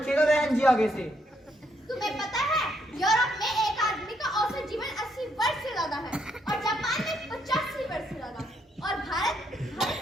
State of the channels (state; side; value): normal; both; correlation 0.74